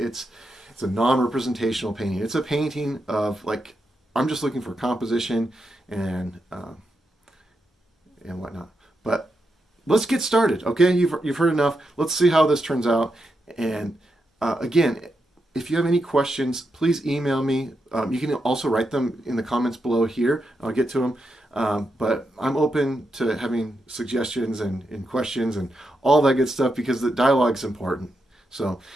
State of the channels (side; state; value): both; normal; correlation 0.85